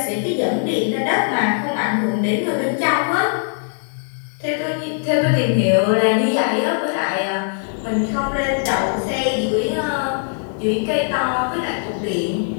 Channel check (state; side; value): silent; right; digital silence